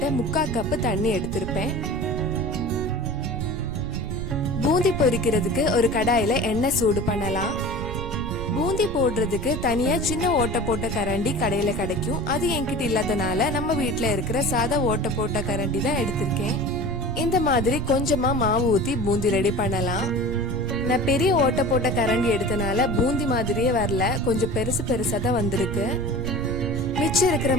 3/4 கப் தண்ணி எடுத்திருப்பேன். பூந்தி பொரிக்கிறதுக்கு ஒரு கடாயில எண்ணெய் சூடு பண்ணலாம். பூந்தி போடுறதுக்கு தனியா சின்ன ஓட்டை போட்ட கரண்டி கடையில கிடைக்கும். அது என்கிட்ட இல்லாதனால நம்ம வீட்டுல இருக்கிற சாதா ஓட்டை போட்ட கரண்டி தான் எடுத்திருக்கேன். இந்த மாதிரி கொஞ்சமா மாவு ஊத்தி பூந்தி ரெடி பண்ணலாம். நான் பெரிய ஓட்டை போட்ட கரண்டி எடுத்தனால பூந்தி மாதிரியே வரல, கொஞ்சம் பெருசு பெருசா தான் வந்திருக்கு. மிச்சம் இருக்கிற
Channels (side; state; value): right; noise; rumble, 7 dB below the sound